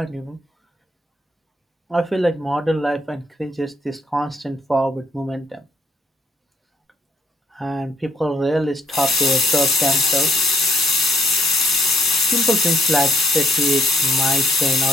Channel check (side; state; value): both; normal; correlation 0.67